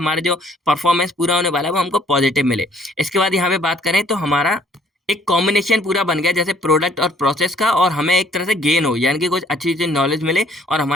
जो परफॉर्मेंस पूरा होने वाला है वो हमको पॉजिटिव मिले। इसके बाद यहाँ पे बात करें तो हमारा एक कॉम्बिनेशन पूरा बन गया, जैसे प्रोडक्ट और प्रोसेस का, और हमें एक तरह से गेन हो, यानी कि कुछ अच्छी चीज नॉलेज मिले और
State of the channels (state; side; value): normal; both; correlation 0.60